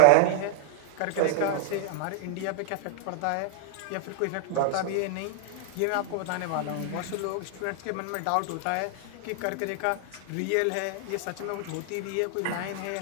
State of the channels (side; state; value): both; different; correlation -0.01